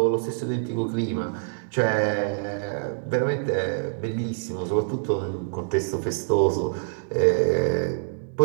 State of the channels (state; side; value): silent; left; digital silence